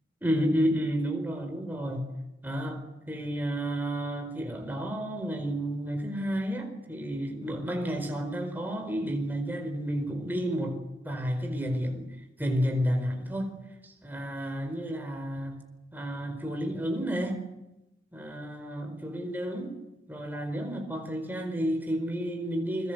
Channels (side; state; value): both; normal; correlation 0.83